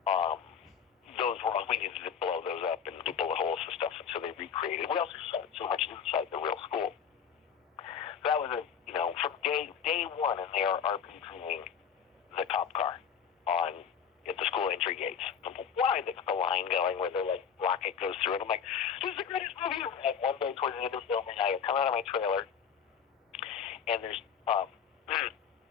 Those were all, we needed to blow those up and do bullet holes and stuff, and so they recreated. We also shot so much inside the real school. So that was from day one, and they are RPGing the cop car at the school entry gates. Why the line going where the rocket goes through it? I'm like, this is the greatest movie ever. And one day towards the end of filming, I come out of my trailer, and there's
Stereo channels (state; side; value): quieter; right; 7.5 dB